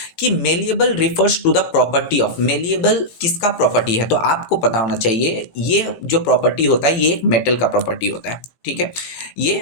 कि malleable refers to the property of. Malleable किसका प्रॉपर्टी है? तो आपको पता होना चाहिए ये जो प्रॉपर्टी होता है ये एक मेटल का प्रॉपर्टी होता है। ठीक है, ये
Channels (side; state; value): right; late; 18 ms